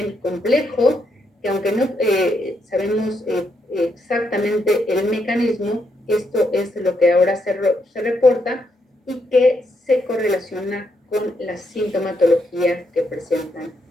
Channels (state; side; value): normal; both; correlation 0.78